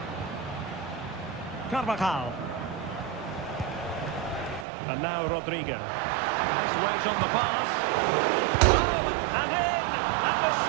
Carvajal. And now Rodrigo. Nice weight on the pass. Oh, and in! At the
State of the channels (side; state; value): left; drops out; at 4.7 s